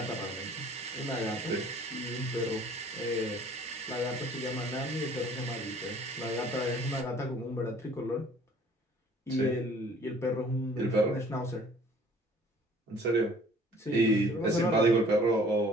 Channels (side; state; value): both; normal; correlation 0.54